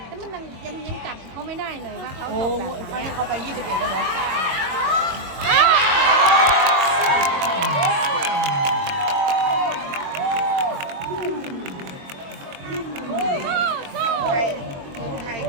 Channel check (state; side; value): late; left; 22 ms